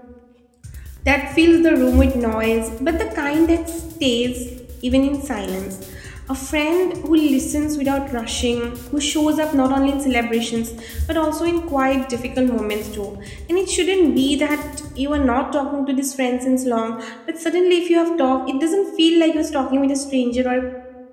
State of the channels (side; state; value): both; identical; correlation 1.00